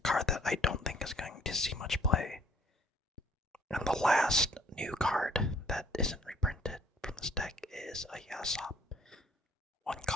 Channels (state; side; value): normal; both; correlation 0.57